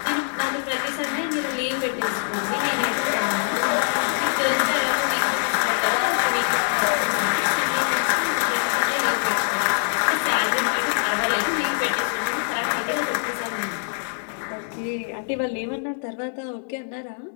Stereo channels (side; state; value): right; silent; 63 dB below the other